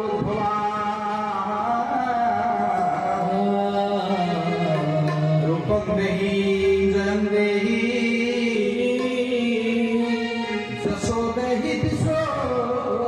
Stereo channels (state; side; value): identical; both; correlation 1.00